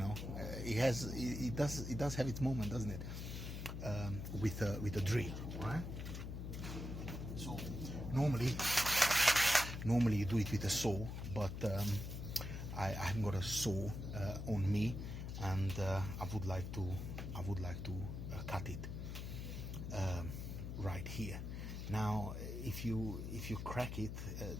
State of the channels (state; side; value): noise; left; hum, 6 dB below the sound